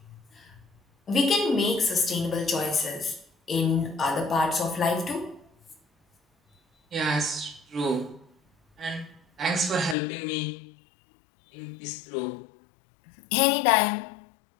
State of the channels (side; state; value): right; drops out; at 10.0 s